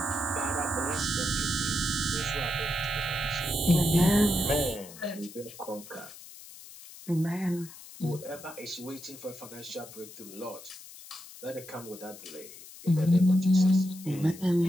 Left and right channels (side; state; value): left; noise; hiss, 17 dB below the sound